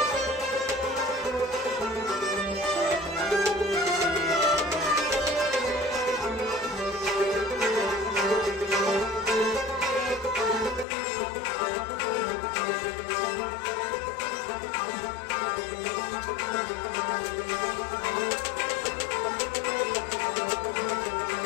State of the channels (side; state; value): right; drops out; at 10.9 s